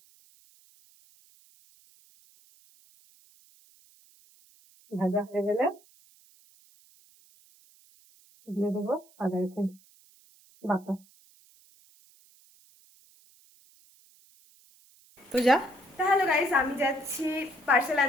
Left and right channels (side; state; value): right; noise; hiss, 29 dB below the sound